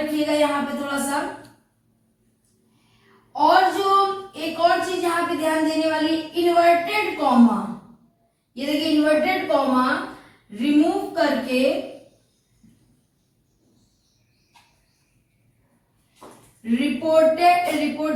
यहाँ पे थोड़ा सा। और जो एक और चीज यहाँ पे ध्यान देने वाली, इन्वर्टेड कॉमा। ये देखिए, इन्वर्टेड कॉमा रिमूव करके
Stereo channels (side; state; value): both; identical; correlation 1.00